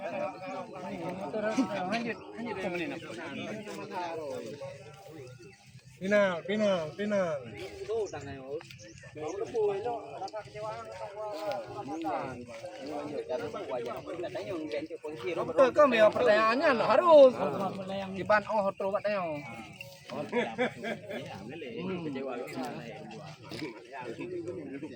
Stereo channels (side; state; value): both; identical; correlation 1.00